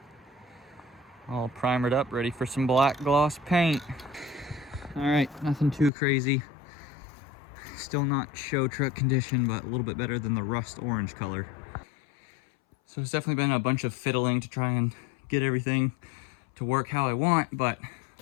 All primered up, ready for some black gloss paint. All right, nothing too crazy. Still not show truck condition, but a little bit better than the rust orange color. So it's definitely been a bunch of fiddling to try and get everything to work how I want, but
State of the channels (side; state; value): right; drops out; at 5.9 s